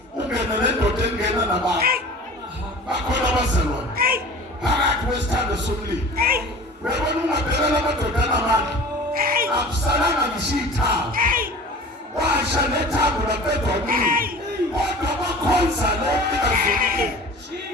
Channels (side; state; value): both; normal; correlation 0.40